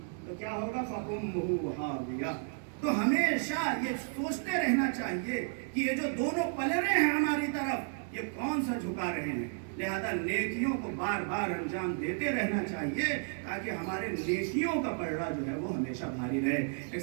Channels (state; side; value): silent; left; 56 dB below the other